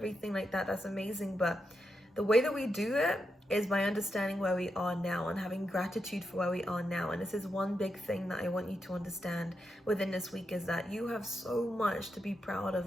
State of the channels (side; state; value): both; normal; correlation 0.85